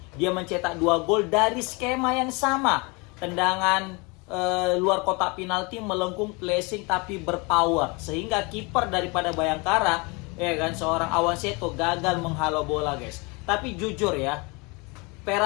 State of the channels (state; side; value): quieter; right; 28.4 dB